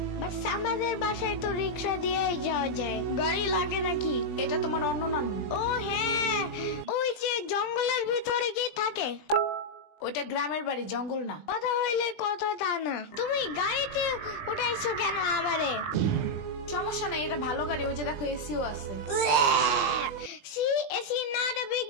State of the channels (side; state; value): right; late; 20 ms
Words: বাট আমাদের বাসায় তো রিক্সা দিয়েই যাওয়া যায়, গাড়ি লাগে নাকি? এটা তোমার অন্য নানু। ও হ্যাঁ, ওই যে জঙ্গলের ভিতরে কি থাকে? ওইটা গ্রামের বাড়ি, জঙ্গল না। কথা হইলে কথা তা না। তুমি গাড়িতে উঠাইছো কেন আমারে? সমস্যা নেই, এটা ভালো গাড়ি। ওই যে দেখো, এসিও আছে। See, it's not a big